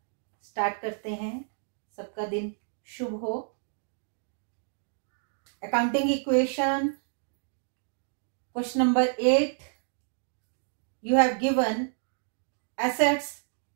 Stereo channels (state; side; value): silent; left; digital silence